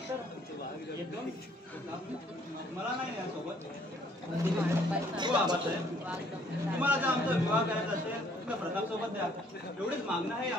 कर. येतो मी. मला नाही यासोबत. हो आबासाहेब तुम्हाला जर आमचा विवाह करायचा असेल तर प्रताप सोबत द्या. एवढीच मागणं आहे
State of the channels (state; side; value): normal; both; correlation 0.62